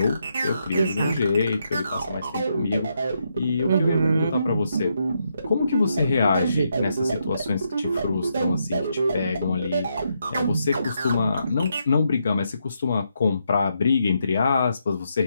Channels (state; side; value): inverted; both; correlation -0.80